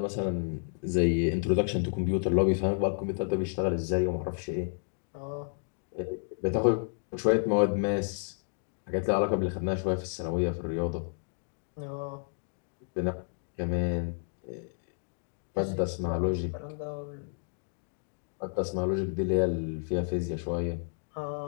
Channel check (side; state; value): right; silent; digital silence